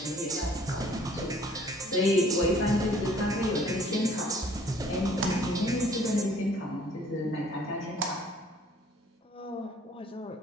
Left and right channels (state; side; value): normal; both; correlation 0.57